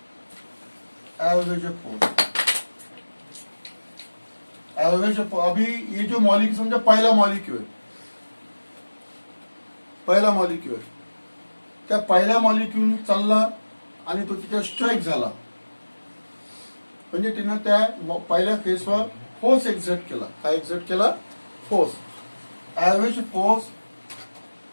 अभी ये जो मॉलिक्यूल समझा, पहिला मॉलिक्यूल आहे. त्या पहिल्या मॉलिक्यूल चालला आणि तो तिथे स्ट्राईक झाला, म्हणजे तिनं त्या पहिल्या फेसवर फोर्स एक्झर्ट केला. काय एक्झर्ट केला? Force. Average force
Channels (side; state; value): both; inverted; correlation -1.00